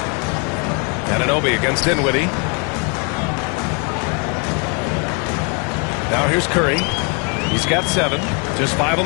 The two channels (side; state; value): right; quieter; 34.6 dB